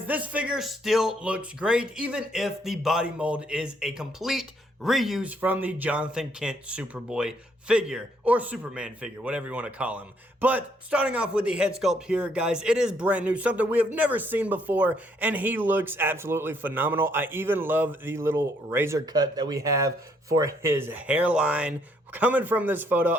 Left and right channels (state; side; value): normal; both; correlation 0.69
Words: this figure still looks great, even if the body mold is a complete reuse from the Jonathan Kent Superboy figure, or Superman figure, whatever you want to call him. But starting off with the head sculpt here, guys, it is brand new, something we have never seen before, and he looks absolutely phenomenal. I even love the little razor cut that we have for his hairline. Coming from this photo,